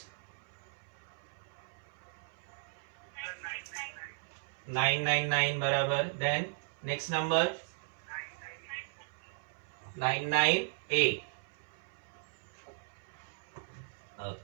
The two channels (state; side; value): silent; left; 53 dB below the other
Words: 999 बराबर, then next number 998,